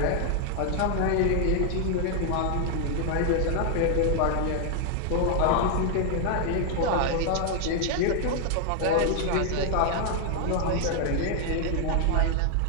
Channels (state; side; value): different; both; correlation 0.00